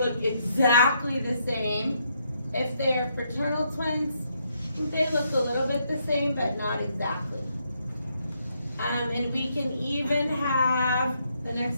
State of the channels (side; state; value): both; inverted; correlation -0.75